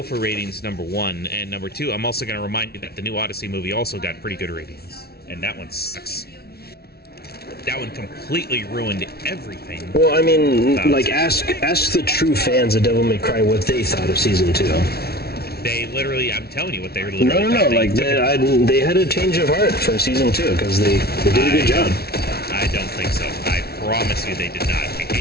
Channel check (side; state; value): right; late; 0.45 ms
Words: for ratings, number one. And number two, I'm also going to remind you that the new Odyssey movie also got pretty good ratings. And that one sucks. That one completely ruined everything. Well, I mean, like, ask the true fans of Devil May Cry what they thought of Season 2. They literally, I'm telling you what they literally No, like, they had a change of heart for Season 2, because they did a good job. I don't think so. I promise you they did not. They